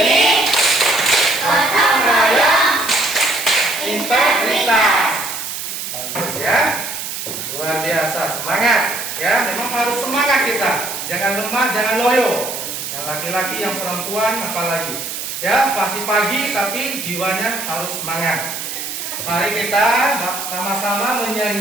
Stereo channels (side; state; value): right; noise; hiss, 6 dB below the sound